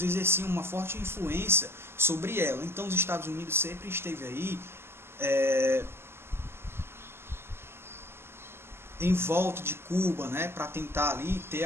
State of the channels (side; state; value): left; late; 0.12 ms